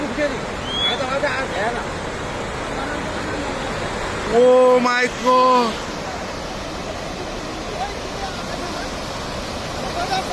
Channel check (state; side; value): identical; both; correlation 1.00